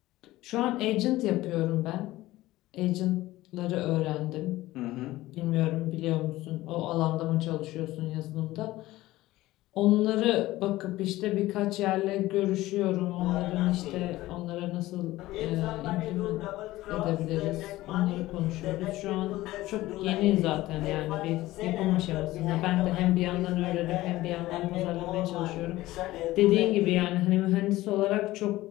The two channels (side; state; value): right; quieter; 17.1 dB